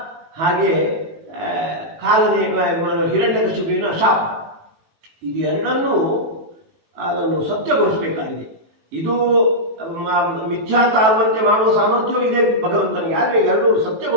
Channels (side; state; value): left; late; 18 ms